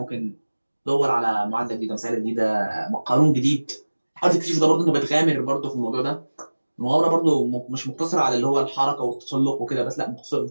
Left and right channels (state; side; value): inverted; both; correlation -1.00